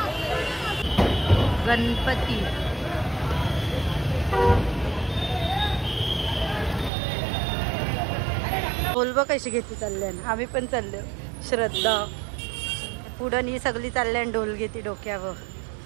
गणपती बोलबो कशी घेते चालल्यान. आम्ही पण चाललो. श्रद्धा पुढं ही सगळी चालल्यान ढोल घेते डोक्यावर.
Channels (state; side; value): drops out; left; at 6.9 s